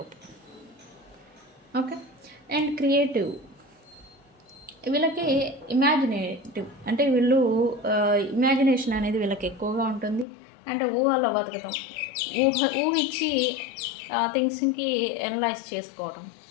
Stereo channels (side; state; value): right; drops out; at 10.2 s